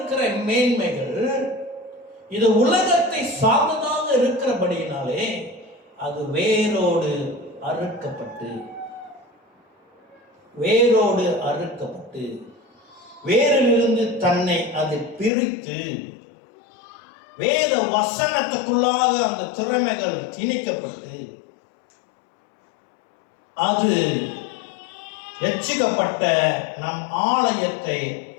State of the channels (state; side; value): drops out; right; at 15.3 s